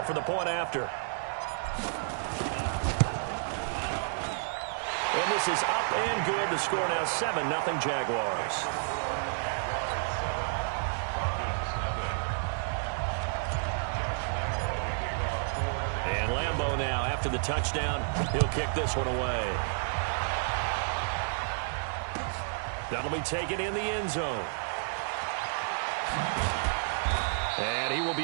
for the point after. And this is up and good. The score now 7-0 Jaguars. And Lambo now after the touchdown. He'll kick this one away. That'll be taken in the end zone. And he will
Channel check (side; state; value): left; silent; digital silence